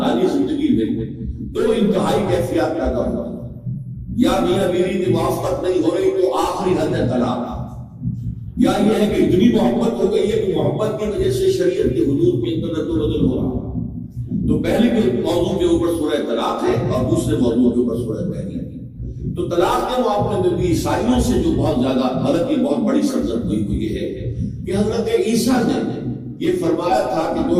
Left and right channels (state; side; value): identical; both; correlation 1.00